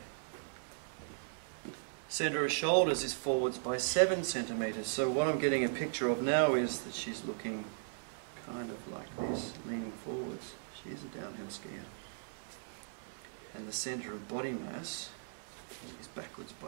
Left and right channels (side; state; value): left; silent; 53 dB below the other